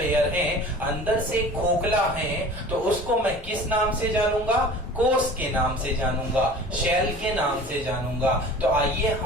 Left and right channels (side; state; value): both; normal; correlation 0.42